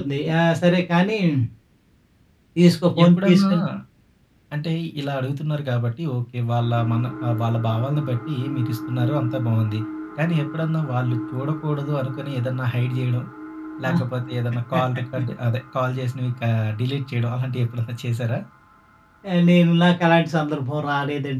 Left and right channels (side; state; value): both; identical; correlation 1.00